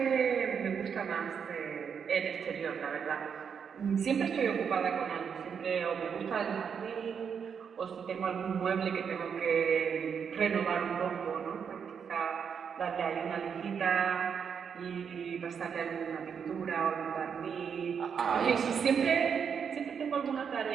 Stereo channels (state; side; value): quieter; left; 7.0 dB